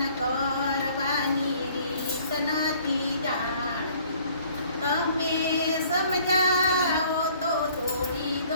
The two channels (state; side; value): inverted; both; correlation -0.57